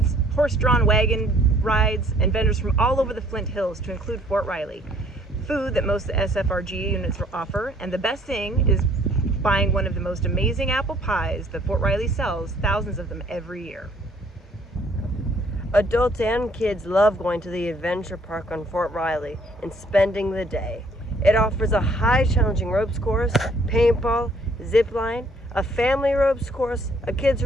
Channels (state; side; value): normal; both; correlation 0.61